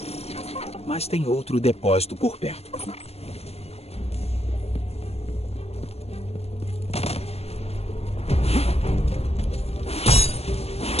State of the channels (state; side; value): late; right; 0.30 ms